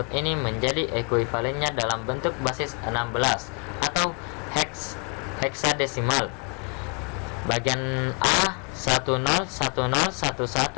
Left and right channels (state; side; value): quieter; right; 35.5 dB